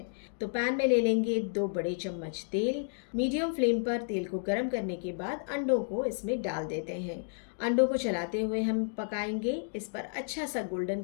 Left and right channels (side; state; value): right; silent; digital silence